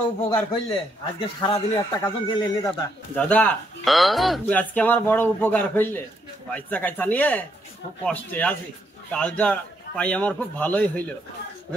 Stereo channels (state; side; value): normal; both; correlation 0.75